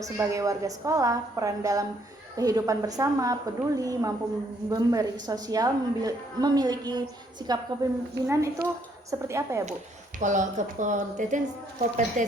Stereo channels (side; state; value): both; normal; correlation 0.68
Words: sebagai warga sekolah, peran dalam kehidupan bersama, peduli, mampu memberi sosial, memiliki sikap kepemimpinan, itu seperti apa ya Bu? Kalau